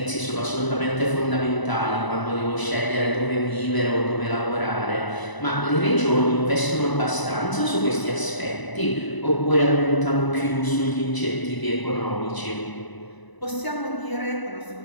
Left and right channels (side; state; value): right; late; 1.0 ms